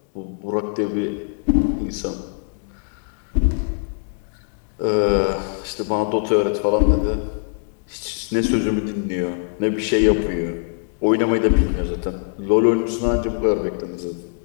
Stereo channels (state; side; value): silent; right; digital silence